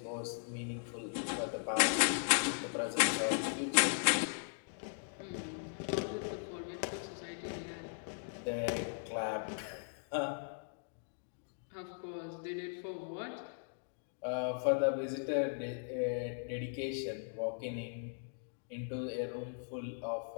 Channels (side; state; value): right; silent; digital silence